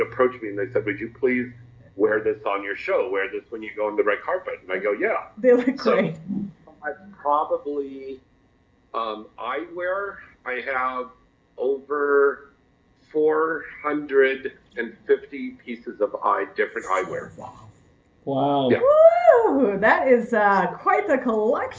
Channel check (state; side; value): identical; both; correlation 1.00